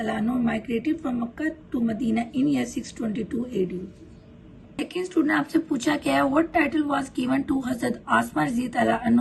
अन्हु migrated from Mecca to Medina in year 622 AD। Second student आपसे पूछा गया है, what title was given to हजरत आसमा रज़ी अल्लाह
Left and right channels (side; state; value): both; identical; correlation 1.00